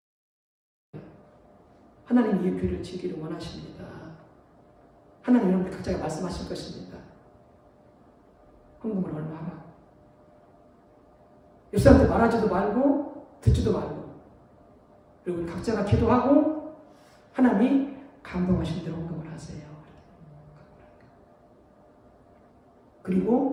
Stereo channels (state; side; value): identical; both; correlation 1.00